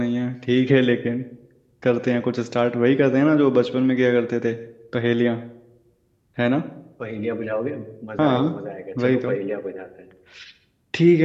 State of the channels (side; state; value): both; identical; correlation 1.00